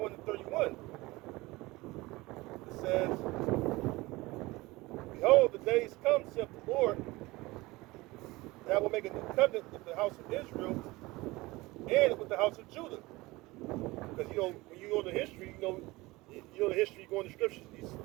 and 31. It says, behold, the days come, saith the Lord, that I will make a new covenant with the house of Israel and with the house of Judah. Because when you go to history, the history, you go in the scriptures, you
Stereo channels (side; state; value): left; quieter; 21.1 dB